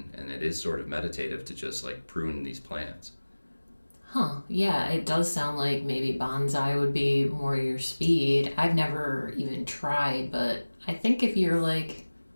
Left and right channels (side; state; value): both; inverted; correlation -1.00